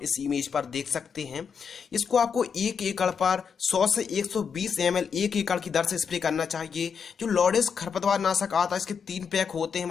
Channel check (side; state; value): right; quieter; 6.5 dB